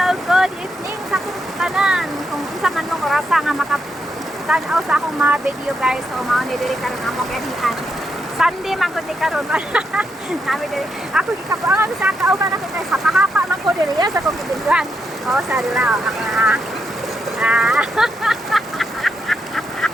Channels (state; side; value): normal; both; correlation 0.81